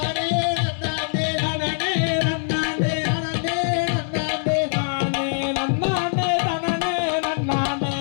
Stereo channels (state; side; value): silent; right; digital silence